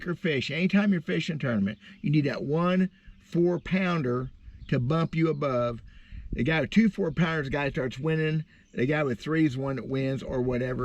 fish. Anytime you're fishing a tournament, you need that 1 4-pounder to bump you above. The guy with 2 4-pounders, the guy starts winning. The guy with 3 is the one that wins, or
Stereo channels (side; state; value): both; identical; correlation 1.00